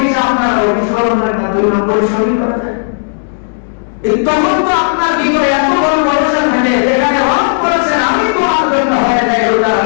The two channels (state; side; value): silent; right; digital silence